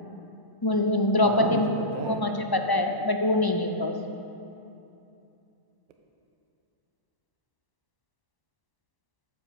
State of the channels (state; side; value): late; right; 1.0 ms